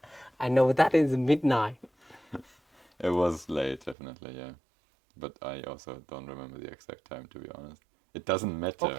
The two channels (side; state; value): left; drops out; at 4.0 s